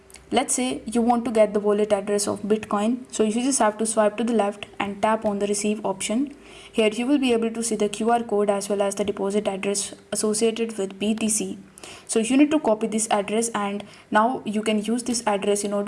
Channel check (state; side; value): identical; both; correlation 1.00